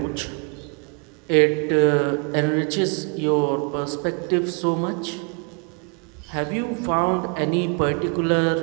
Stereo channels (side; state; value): left; quieter; 37.2 dB